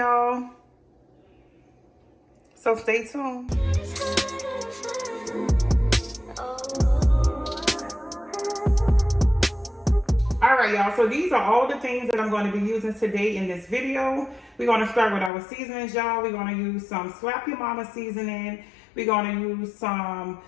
So stay tuned. All right, y'all, so these are all the things that I'm going to be using today in this video. We're going to start with our seasonings, y'all. We're going to use some Slap Your Mama seasoning. We're going to use some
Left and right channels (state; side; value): drops out; right; at 15.3 s